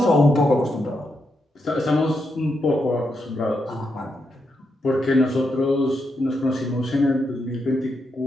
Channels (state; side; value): normal; both; correlation 0.82